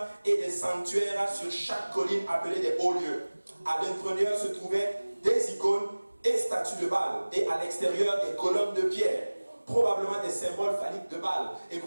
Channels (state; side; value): inverted; both; correlation -1.00